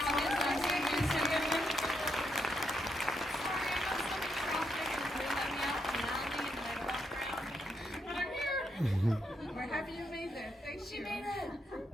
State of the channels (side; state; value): both; normal; correlation 0.79